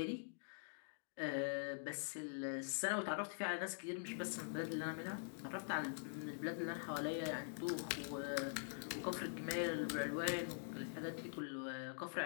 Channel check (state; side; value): silent; right; digital silence